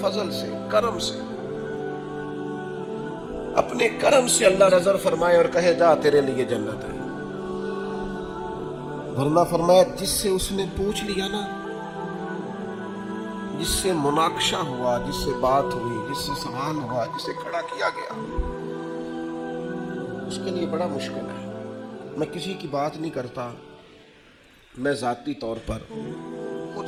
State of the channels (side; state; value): both; identical; correlation 1.00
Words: فضل سے, کرم سے, اپنے کرم سے اللہ نظر فرمائے اور کہے جا تیرے لیے جنت ہے. ورنہ فرمایا جس سے اس نے پوچھ لیا نا, جس سے مناقشہ ہوا, جس سے بات ہوئی, جس سے سوال ہوا, جس سے کھڑا کیا گیا, اس کے لیے بڑا مشکل ہے. میں کسی کی بات نہیں کرتا, میں ذاتی طور پر خود